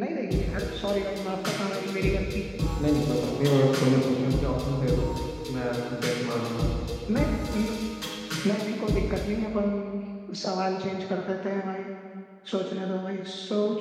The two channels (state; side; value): identical; both; correlation 1.00